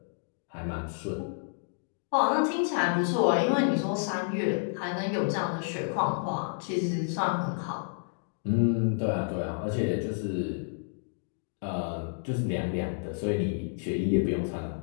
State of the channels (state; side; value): silent; right; digital silence